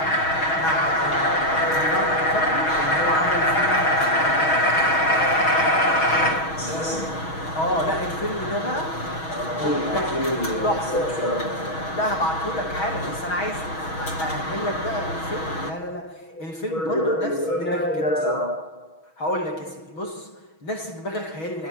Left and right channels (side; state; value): right; late; 6.3 ms